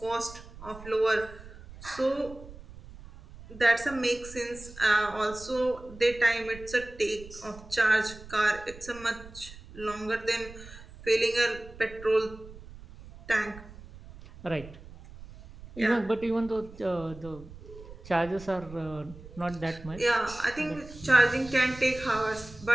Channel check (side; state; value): right; noise; rumble, 17 dB below the sound